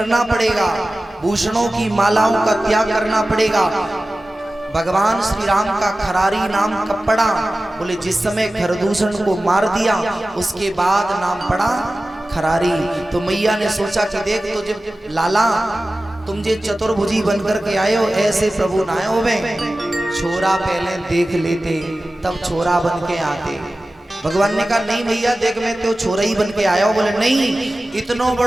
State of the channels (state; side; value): normal; both; correlation 0.96